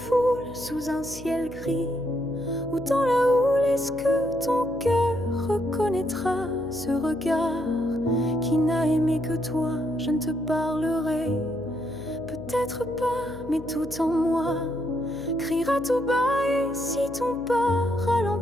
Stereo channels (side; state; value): left; noise; hum, 14 dB below the sound